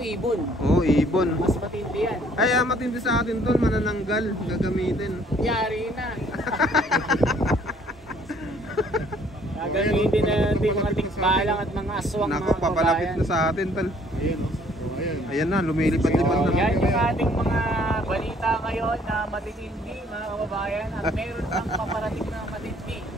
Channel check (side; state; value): both; normal; correlation 0.61